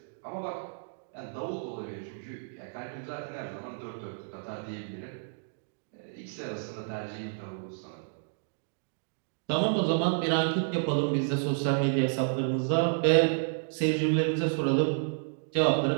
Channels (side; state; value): left; silent; digital silence